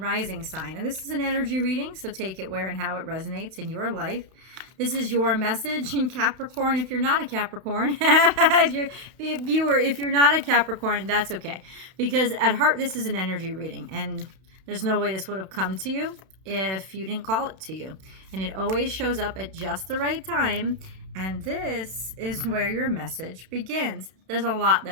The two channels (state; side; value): late; left; 32 ms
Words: sign. And this is an energy reading, so take it where and how it resonates in your life. This is your message in Capricorn. If you're not a Capricorn, if you're not a Capricorn, that's okay. Because at heart, this is an energy reading. And there's no way this would have come to you if you didn't call it to you. And it always shows up at just the right time. And this is where your message begins. There's a lot